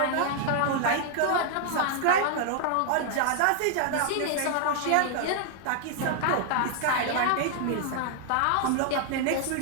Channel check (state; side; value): different; both; correlation 0.00